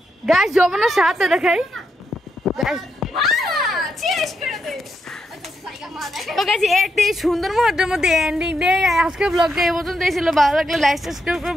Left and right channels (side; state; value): both; normal; correlation 0.81